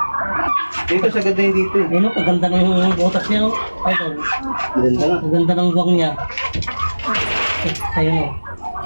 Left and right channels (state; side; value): inverted; both; correlation -1.00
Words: Dito sa ganda yung dito eh. Ayun, kaganda ng butas niya. Oh. Ayun, Ganda na. kaganda ng guwang niya. Ayun. Oh.